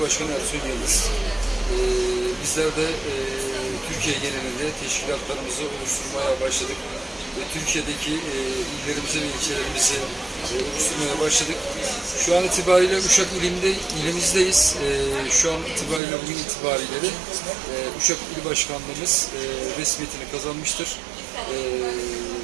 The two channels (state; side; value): drops out; left; at 16.0 s